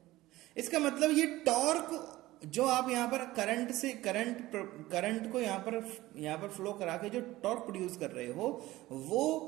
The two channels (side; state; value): left; quieter; 17.4 dB